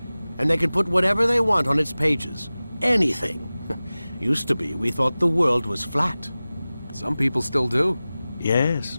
and they can put whatever they want on its pages. Anything. Used to be, we thought the world was flat. Some people still do. Yes,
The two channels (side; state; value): both; inverted; correlation -0.97